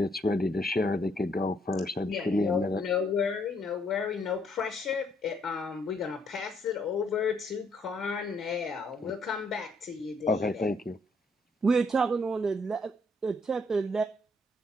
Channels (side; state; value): both; normal; correlation 0.70